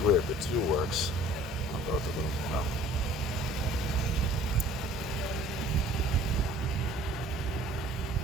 weird, the 2 works on both of them. Well,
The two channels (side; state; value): both; normal; correlation 0.51